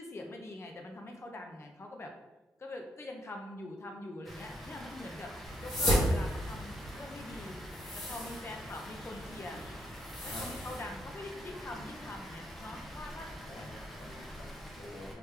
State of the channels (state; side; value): normal; both; correlation 0.73